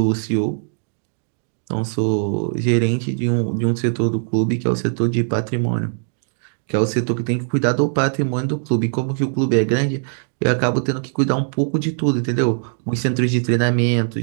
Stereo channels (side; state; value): left; silent; digital silence